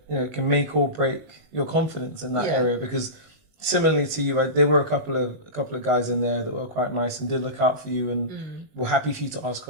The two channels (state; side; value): late; left; 19 ms